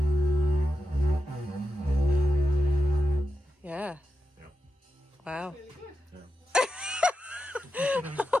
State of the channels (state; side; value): normal; both; correlation 0.89